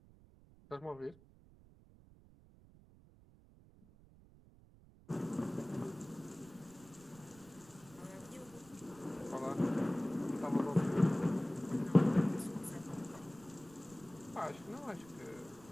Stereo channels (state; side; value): noise; right; rumble, 23 dB below the sound